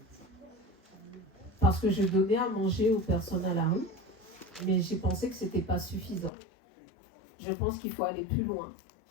Parce que je donnais à manger aux personnes à la rue, mais j'ai pensé que ce n'était pas suffisant. Je pense qu'il faut aller plus loin.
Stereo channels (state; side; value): drops out; right; at 6.3 s